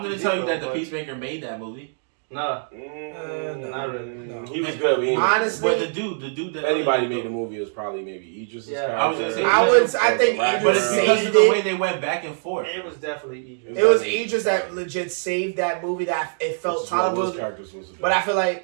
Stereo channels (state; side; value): silent; left; digital silence